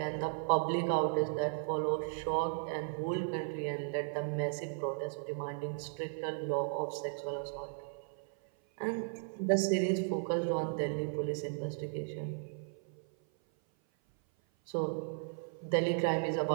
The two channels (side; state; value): left; silent; 54 dB below the other